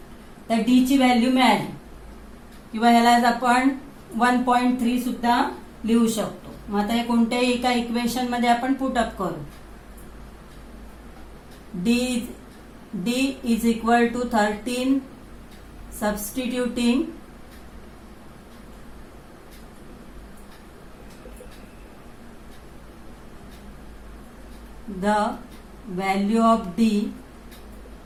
तर D ची व्हॅल्यू मिळाली, किंवा ह्याला आपण 1.3 सुद्धा लिहू शकतो. मग आता हे कोणत्याही एका इक्वेशन मध्ये आपण पुटअप करू. D is equal to 13 substituting the value of D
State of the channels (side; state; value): both; identical; correlation 1.00